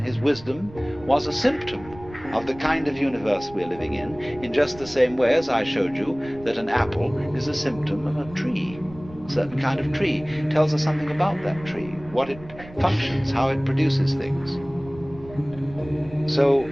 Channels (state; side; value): noise; right; rumble, 18 dB below the sound